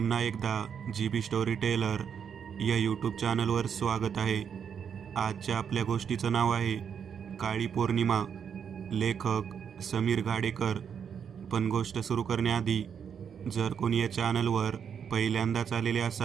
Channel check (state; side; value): quieter; left; 7.5 dB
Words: एकदा GB स्टोरी टेलर या यूट्यूब चॅनलवर स्वागत आहे. आजच्या आपल्या गोष्टीचं नाव आहे काळी पौर्णिमा. लेखक समीर घाडेकर. पण गोष्ट सुरू करण्याआधी जर कोणी या चॅनलवर पहिल्यांदाच आलेले